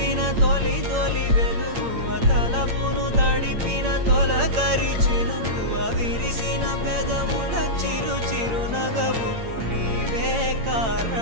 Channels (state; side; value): late; left; 8.8 ms